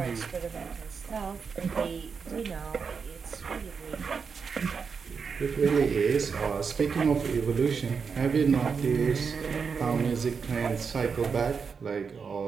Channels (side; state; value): left; quieter; 5.7 dB